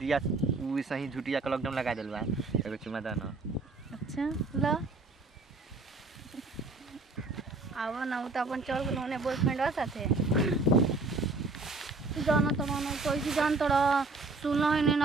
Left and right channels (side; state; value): left; quieter; 3.5 dB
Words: वो सही झूठिया का लॉकडाउन लगा दिल बा। एगो चुमा दो ना। अच्छा लो आवा ना तो अपन चल गए होने बॉयफ्रेंड साथे जाना तो मानो कैसे जान तोड़ा सुना है नहीं